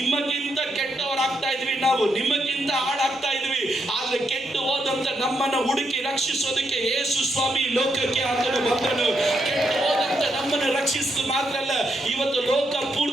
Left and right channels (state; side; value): normal; both; correlation 0.80